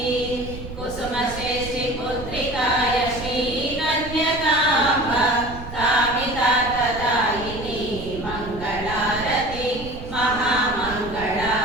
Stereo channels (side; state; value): right; noise; rumble, 11 dB below the sound